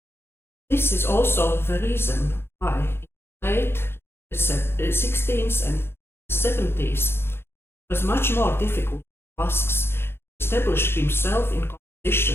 This is also the reason why in the late 16th and 70s it was much more difficult for Vasks to establish himself in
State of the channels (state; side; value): late; right; 0.11 ms